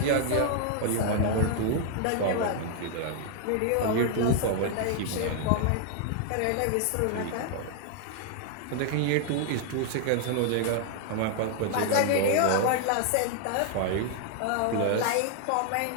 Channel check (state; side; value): different; both; correlation 0.00